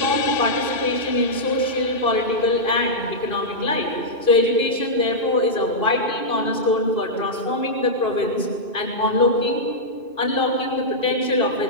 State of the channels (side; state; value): right; late; 2.6 ms